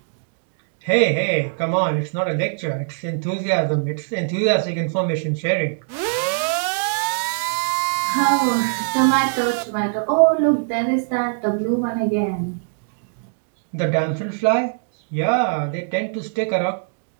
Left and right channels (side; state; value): left; silent; digital silence